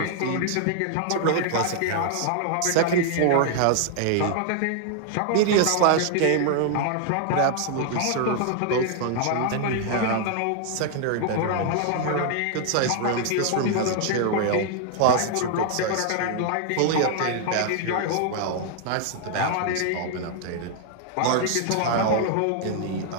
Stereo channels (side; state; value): both; different; correlation 0.00